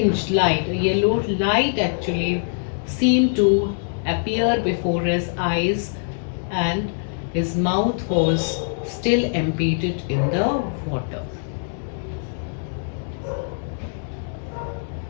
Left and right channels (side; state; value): right; silent; digital silence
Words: light. A yellow light actually seemed to appear before his eyes, and his mouth was still embedded in the water.